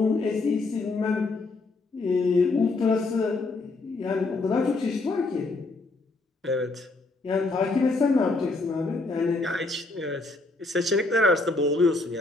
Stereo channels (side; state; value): right; quieter; 3.3 dB